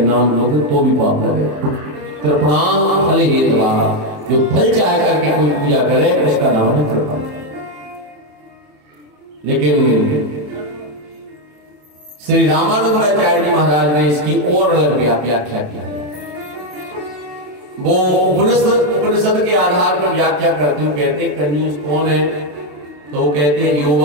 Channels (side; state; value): left; late; 27 ms